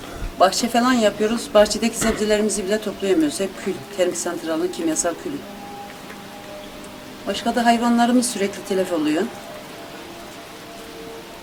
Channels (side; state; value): both; identical; correlation 1.00